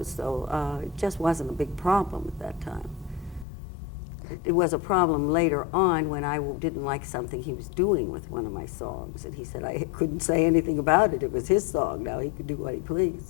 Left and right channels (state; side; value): drops out; right; at 3.5 s